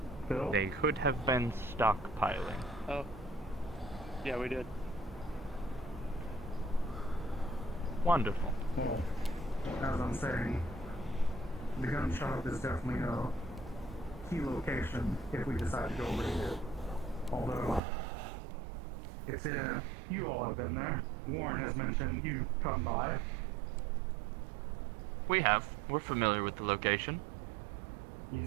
Bill? They could have been stockpiling. Oh. Yeah, we did. Wonderful. Well, as I'm saying, the gun shop is definitely a key location if we decide to go raid it. Although, it's in, you all have been there. Warren has mentioned you come by. We have. We're familiar with the location.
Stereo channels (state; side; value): drops out; left; at 17.8 s